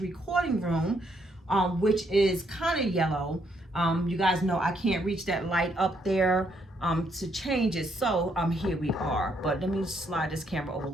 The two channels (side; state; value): both; normal; correlation 0.73